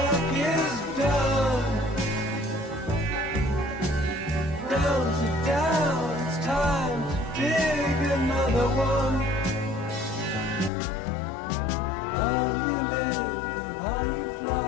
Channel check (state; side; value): drops out; right; at 10.7 s